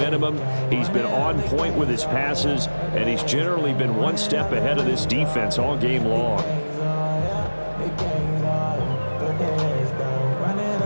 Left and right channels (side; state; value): both; inverted; correlation -1.00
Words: He's been on point with his passes, and he's generally been one step ahead of this defense all game long.